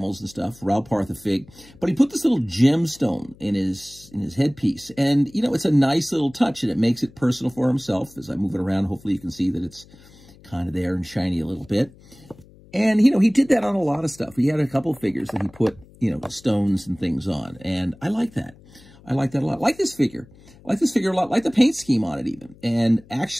and stuff, Ral Partha fig, but he put this little gemstone in his headpiece. And, you know, it's a nice little touch, and it makes it personal for himself. As I move it around, hopefully you can see that it's kind of there and shiny a little bit. And, you know, he did that on a lot of stuff. He had a couple of figures that he put, you know, stones and things on. And I like that. I like that a lot. I like this figure. I like this figure a lot. I like the paint scheme on it even. And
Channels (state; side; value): noise; left; hum, 24 dB below the sound